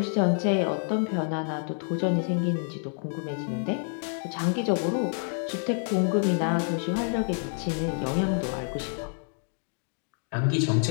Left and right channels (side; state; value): right; silent; 59 dB below the other